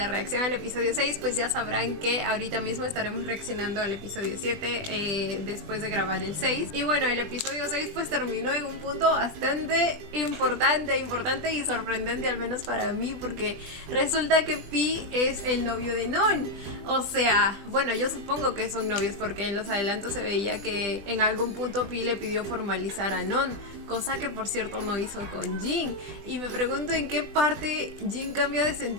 reacción al episodio 6, pues ya sabrán que ahorita mismo estaremos reaccionando al episodio 7 después de grabar el 6. Y bueno, el episodio 6 pues terminó en un punto bastante importante y sorprendente, al menos para mí, porque resulta que Pi es el novio de Non. O sea, bueno, yo supongo que son novios porque en los adelantos se veía que en algún punto Pi le pidió formalizar a Non, cosa que por cierto no hizo con Jin. Y me pregunto en qué parte Jin cambia de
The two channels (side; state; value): left; late; 20 ms